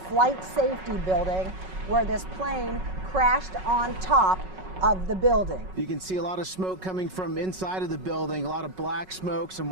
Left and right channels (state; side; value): late; left; 5.4 ms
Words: safety building where this plane crashed on top of the building. You can see a lot of smoke coming from inside of the building, a lot of black smoke, some